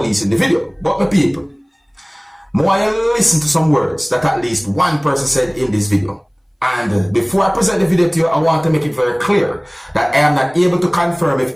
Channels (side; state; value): both; identical; correlation 1.00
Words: in the video, but my people, more I listen to some words that at least one person said in this video. And before I present the video to you, I want to make it very clear that I am not able to confirm